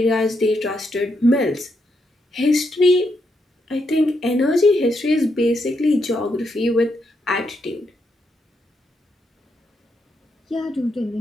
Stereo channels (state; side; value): normal; both; correlation 0.80